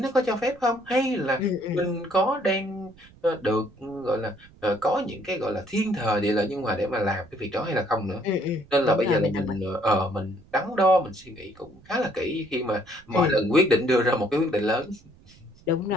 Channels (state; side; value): noise; right; rumble, 25 dB below the sound